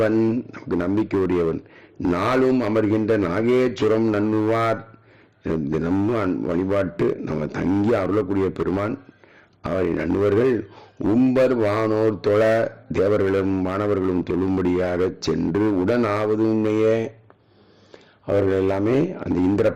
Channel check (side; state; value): both; identical; correlation 1.00